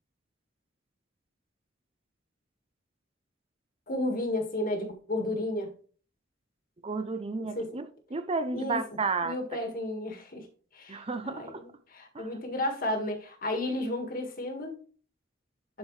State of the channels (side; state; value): both; normal; correlation 0.20